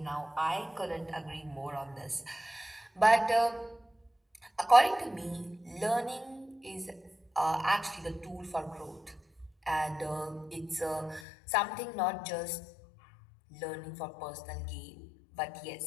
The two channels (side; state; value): right; drops out; at 11.2 s